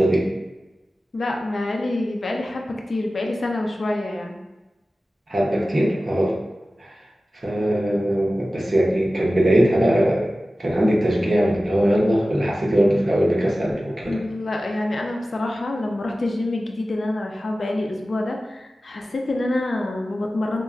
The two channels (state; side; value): normal; both; correlation 0.95